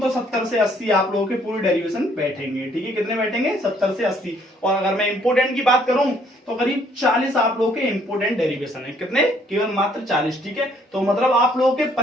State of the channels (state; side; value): normal; both; correlation 0.64